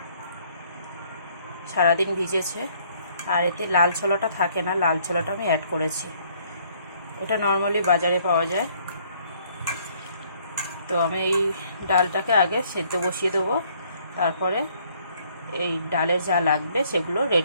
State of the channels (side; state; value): both; inverted; correlation -0.63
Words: সারাদিন ভিজেছে। আর এতে লাল ছোলাটা থাকে না, লাল ছোলাটা আমি অ্যাড করেছি। এটা নর্মালি বাজারে পাওয়া যায়। তো আমি এই ডালটাকে আগে সেদ্ধ বসিয়ে দেবো, তারপরে এই ডালে যা লাগবে সেগুলো